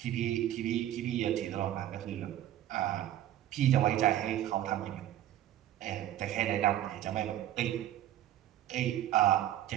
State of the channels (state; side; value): quieter; left; 12.5 dB